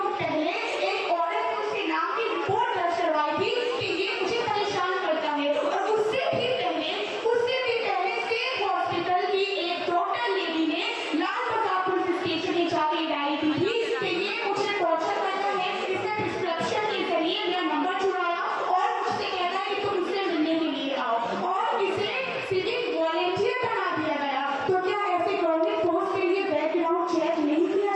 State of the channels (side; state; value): both; identical; correlation 1.00